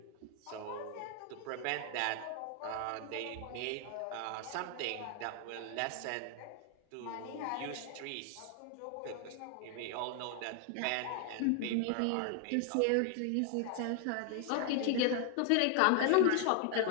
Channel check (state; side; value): different; both; correlation 0.00